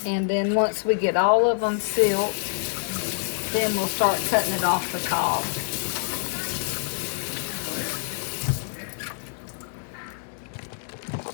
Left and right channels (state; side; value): silent; right; digital silence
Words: And then once we get all of them silked, then we'll start cutting it off the cob.